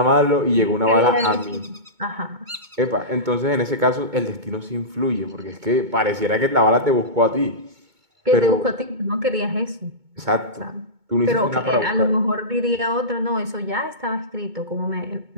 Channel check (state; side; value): late; left; 2.2 ms